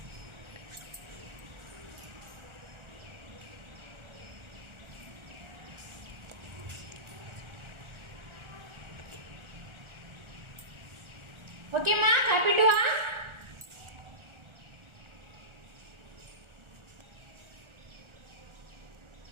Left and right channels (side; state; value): left; late; 1.4 ms